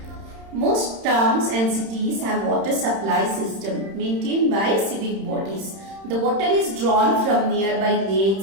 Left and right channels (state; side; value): late; left; 31 ms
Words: Most towns and cities have water supply system maintained by civic bodies. The water is drawn from nearby